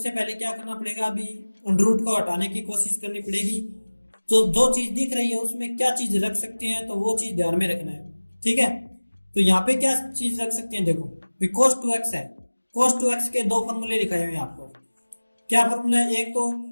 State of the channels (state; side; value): inverted; both; correlation -1.00